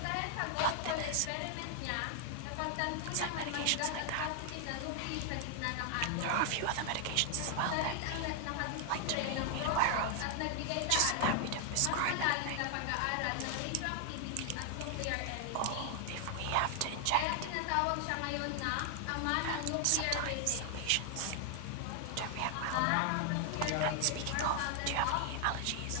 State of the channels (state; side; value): different; both; correlation 0.00